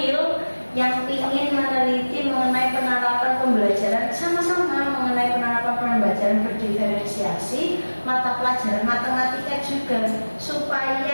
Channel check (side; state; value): both; inverted; correlation -1.00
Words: yang ingin meneliti mengenai penerapan pembelajaran sama-sama mengenai penerapan pembelajaran berdiferensiasi mata pelajaran matematika juga,